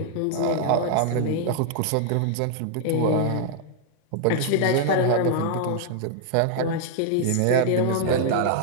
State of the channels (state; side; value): different; both; correlation 0.00